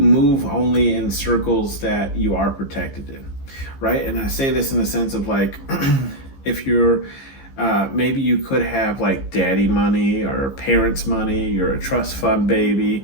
only in circles that you are protected in, right? And I say this in the sense of like, if you're maybe you could have like daddy money or parents money, you're a trust fund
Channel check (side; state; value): right; late; 15 ms